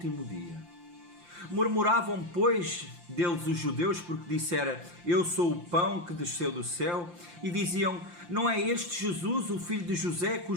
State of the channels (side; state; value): left; late; 5.8 ms